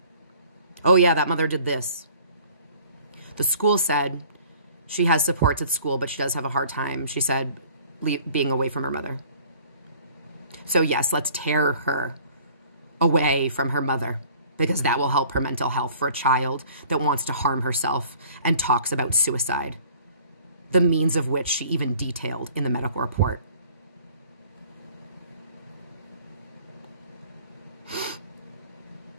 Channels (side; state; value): both; inverted; correlation -0.51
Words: Oh yeah, that mother did this. The school said She has supports at school, but she does have a hard time, she said, being away from her mother. So yes, let's tear her away from her mother, because that will help her mental health for a child that wants to harm herself and talks about suicide, the means of which she even detailed in the medical report.